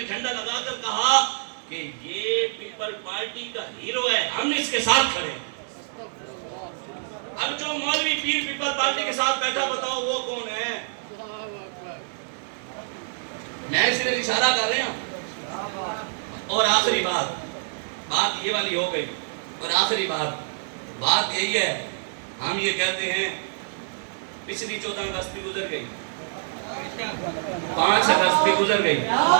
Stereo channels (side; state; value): left; silent; digital silence